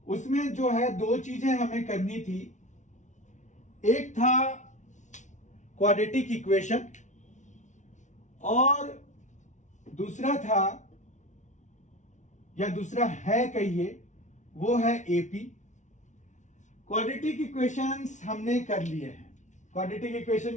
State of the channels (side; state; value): right; late; 0.36 ms